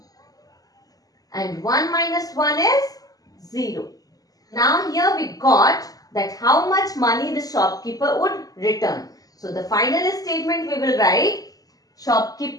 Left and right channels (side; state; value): right; late; 0.18 ms